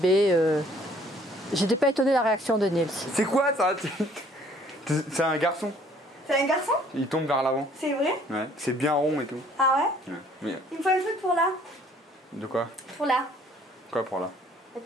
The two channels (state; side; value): normal; both; correlation 0.59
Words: J'étais pas étonnée de la réaction de Nils. C'est quoi ça? C'est un garçon. C'est un garçon? Il tombe vers l'avant. C'est vrai? Ouais, c'est bien rond et tout. Ah ouais? Ouais. Mais... Il me faut un truc pour là. De quoi? Pour là. Quoi pour là? Et